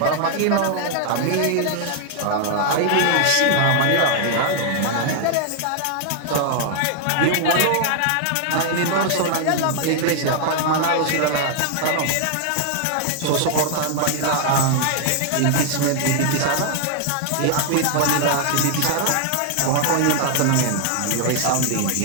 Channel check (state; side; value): different; both; correlation 0.00